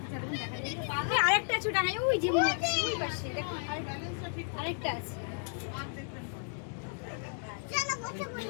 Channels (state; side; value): silent; right; 55 dB below the other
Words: আরেকটা আছে ডাঙায়, ওই যে মনে হচ্ছে ওই পাশে দেখুন আরেকটা আছে।